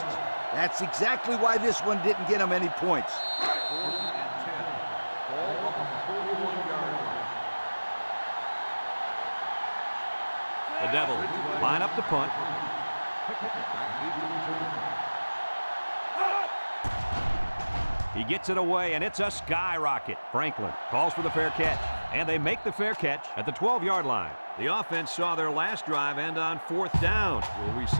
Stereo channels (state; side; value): inverted; both; correlation -1.00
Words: That's exactly why this one didn't get him any points. 4th and 10. Ball on the 41-yard line. The Devils line up to punt. He gets it away, and it's a skyrocket. Franklin calls for the fair catch, and they make the fair catch at the 12-yard line. The offense saw their last drive end on 4th down. Will we